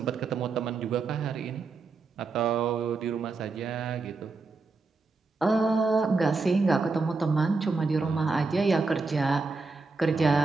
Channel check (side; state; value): left; quieter; 4.0 dB